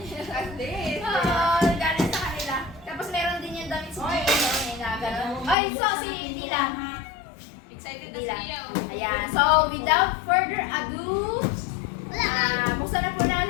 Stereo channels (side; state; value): right; drops out; at 5.6 s